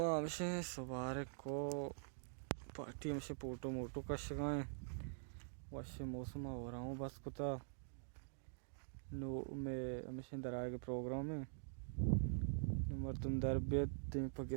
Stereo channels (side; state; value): left; silent; digital silence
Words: हमसे सवार को पार्टी हमसे फोटो मोटो कश गए वैसे मौसम हो रहा हूँ बस कुता नो में हमसे दराए के प्रोग्राम में नंबर तुम दरबियत पके